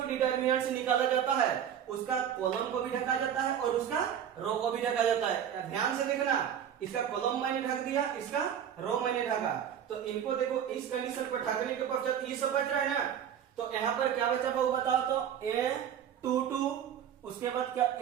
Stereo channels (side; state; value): left; quieter; 9.1 dB